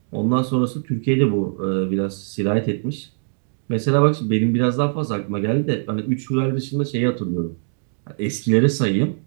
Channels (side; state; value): left; silent; digital silence